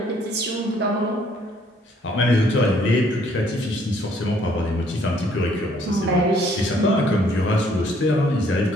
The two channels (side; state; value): both; normal; correlation 0.64